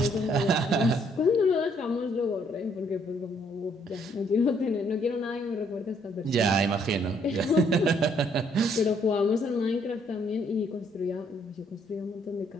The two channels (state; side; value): normal; both; correlation 0.67